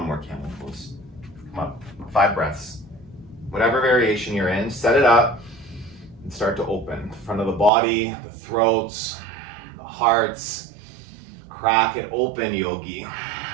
more camel pose. Come on, 5 breaths. Whatever variation you're in, set it up and start to open. The front of the body, the throats, the hearts. Crack it open, yogi.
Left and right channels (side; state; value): left; drops out; at 7.7 s